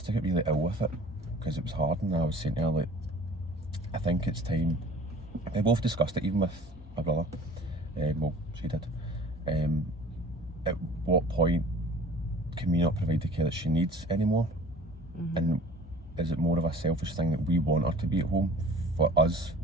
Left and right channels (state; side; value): normal; both; correlation 0.46